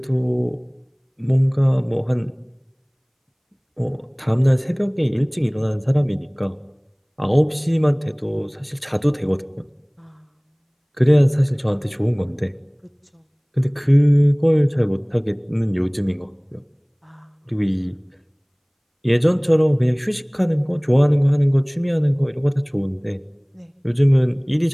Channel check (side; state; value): both; identical; correlation 1.00